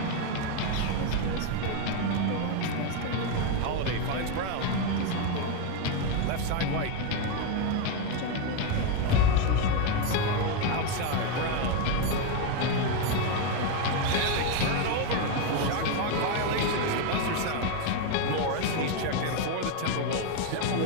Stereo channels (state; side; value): different; both; correlation 0.02